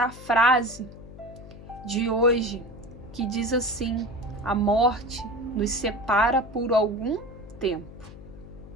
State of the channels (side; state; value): left; noise; hum, 16 dB below the sound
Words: a frase de hoje, que diz assim: a morte nos separa por algum tempo,